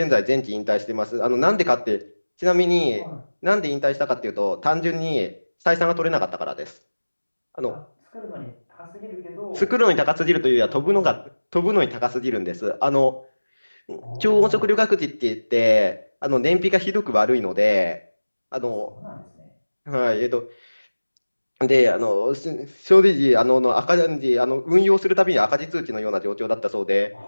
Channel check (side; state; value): both; inverted; correlation -1.00